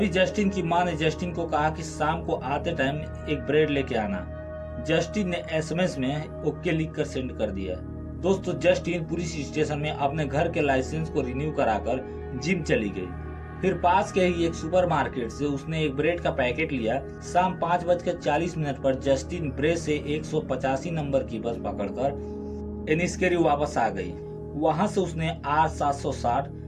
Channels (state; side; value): identical; both; correlation 1.00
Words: जस्टिन की मां ने जस्टिन को कहा कि शाम को आते टाइम एक ब्रेड लेके आना। जस्टिन ने एसएमएस में ओके लिख कर सेंड कर दिया। दोस्तों, जस्टिन पुलिस स्टेशन में अपने घर के लाइसेंस को रिन्यू कराकर जिम चली गई। फिर पास के ही एक सुपरमार्केट से उसने एक ब्रेड का पैकेट लिया। शाम 5:40 पर जस्टिन ब्रेड से 185 नंबर की बस पकड़कर एनिस्केरी वापस आ गई। वहां से उसने R760